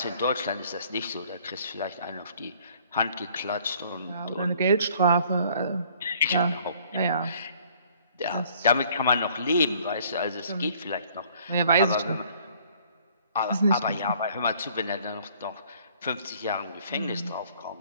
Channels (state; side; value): inverted; both; correlation -0.58